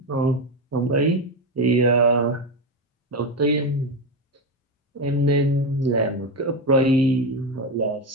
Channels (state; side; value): normal; both; correlation 0.13